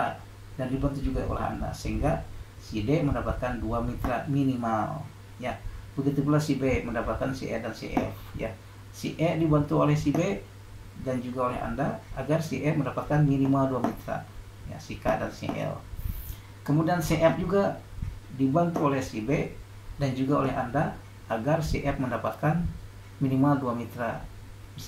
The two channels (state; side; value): identical; both; correlation 1.00